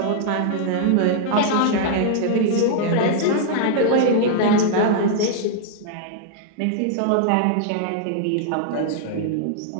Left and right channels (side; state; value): both; different; correlation -0.01